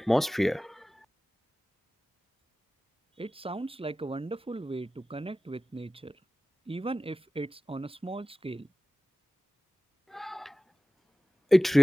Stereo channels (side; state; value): both; normal; correlation 0.97